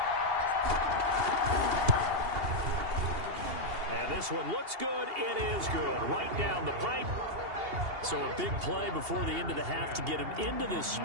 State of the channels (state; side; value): late; left; 2.8 ms